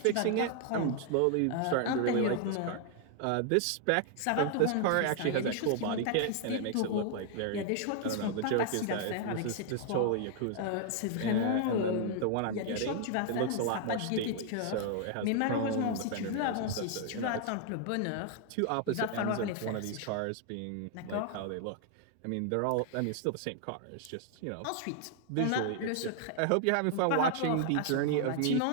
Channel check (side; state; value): both; different; correlation 0.00